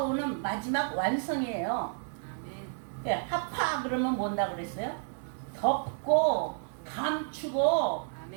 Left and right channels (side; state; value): left; silent; digital silence